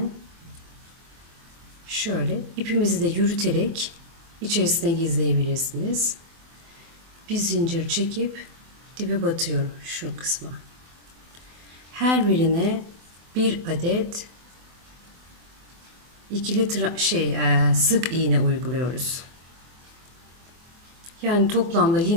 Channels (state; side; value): late; left; 24 ms